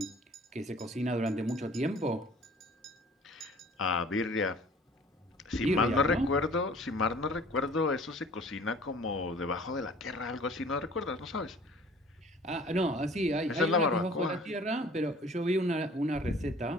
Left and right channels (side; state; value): both; normal; correlation 0.50